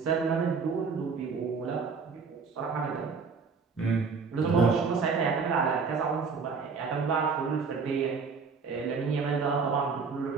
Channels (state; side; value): quieter; left; 5.1 dB